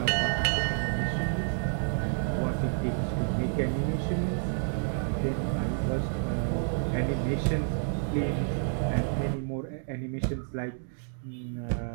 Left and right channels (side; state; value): left; silent; digital silence